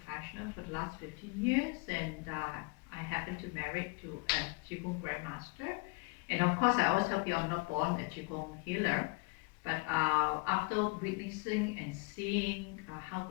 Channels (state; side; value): quieter; right; 28.2 dB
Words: for the last 15 years, and I happened to marry to a Qi Gong grandmaster. And of course, I always tell people I'm not born a Qi Gong healer, but after witnessing and seeing how